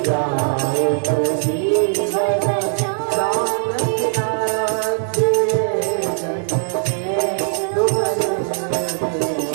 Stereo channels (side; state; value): left; silent; 66 dB below the other